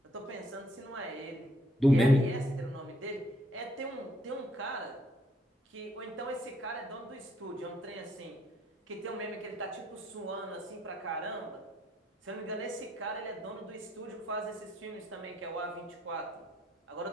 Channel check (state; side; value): normal; both; correlation 0.69